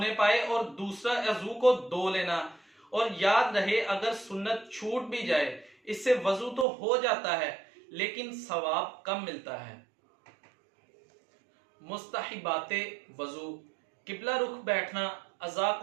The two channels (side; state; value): left; drops out; at 6.7 s